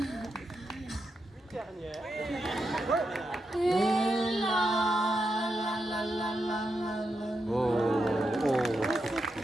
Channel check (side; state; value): both; normal; correlation 0.85